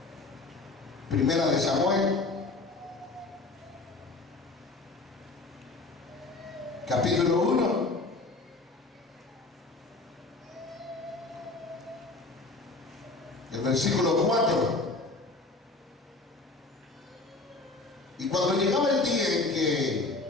Primera de Samuel, capítulo 1. El versículo 4. Y cuando llegaba el día en que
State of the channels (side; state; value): right; quieter; 3.3 dB